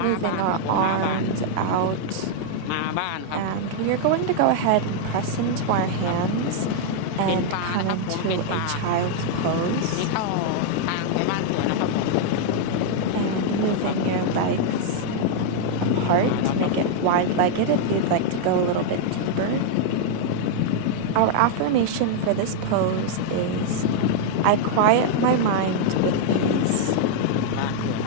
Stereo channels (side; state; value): both; different; correlation -0.01